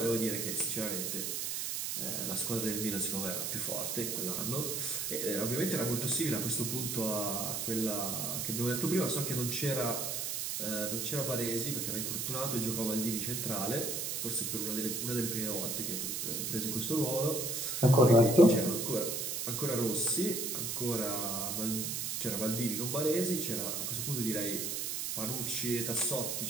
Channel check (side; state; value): right; noise; hiss, 2 dB below the sound